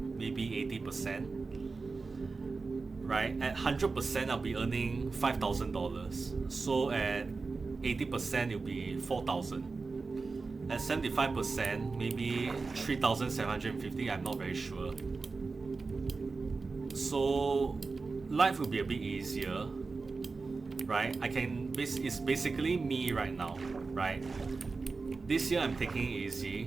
maybe 80%. Right? At 100%, I'll be earning $5,000. So at 80%, it'll be 4,000. At 75%, maybe 3,750. I'm not very sure. So life will be a bit easier, right? It's basically me right now, right? This year I'm taking it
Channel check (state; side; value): quieter; left; 4.1 dB